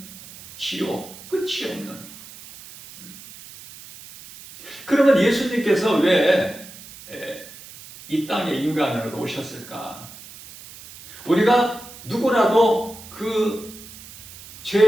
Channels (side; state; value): right; noise; hiss, 17 dB below the sound